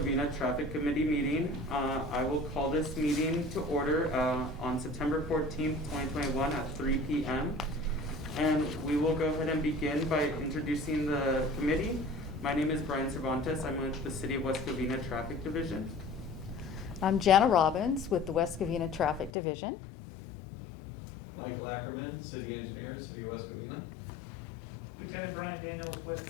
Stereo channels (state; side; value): drops out; right; at 19.3 s